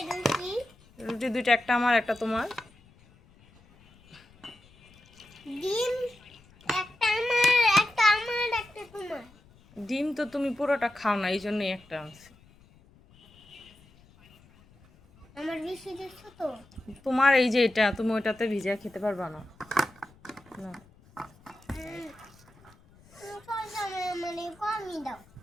রুটি দুইটা, একটা আমার একটা তোমার। ডিম একটা আমার, একটা আমার, একটা তোমার। ডিম তো তুমি পুরোটা খাও না, এই জন্যই একটা আনছি। আমার বেশি দিচ্ছ তো। তোমার এই যে এটা, তুমি ওইটাতে ভিজা খেতে পারবা না। না মানে কমই দাও,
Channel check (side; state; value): left; noise; rumble, 27 dB below the sound